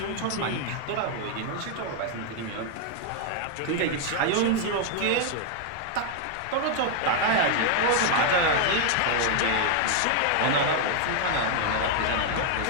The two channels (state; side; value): different; both; correlation 0.00